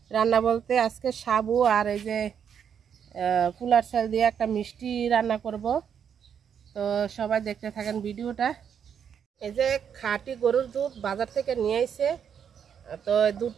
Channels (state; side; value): quieter; left; 7.9 dB